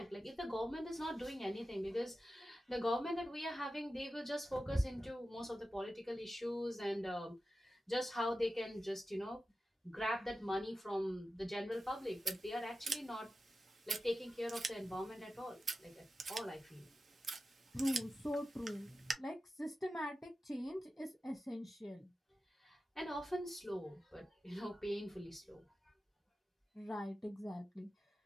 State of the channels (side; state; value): both; normal; correlation 0.93